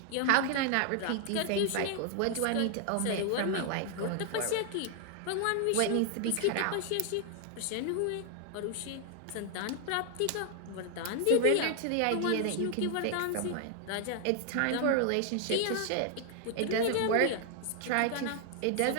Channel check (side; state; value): both; different; correlation 0.00